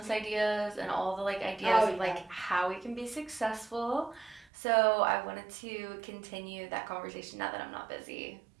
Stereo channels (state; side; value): drops out; left; at 4.5 s